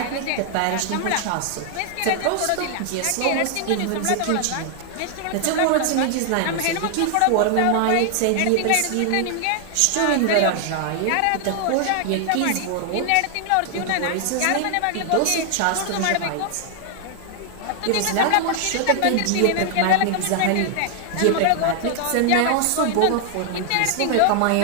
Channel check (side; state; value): both; different; correlation 0.00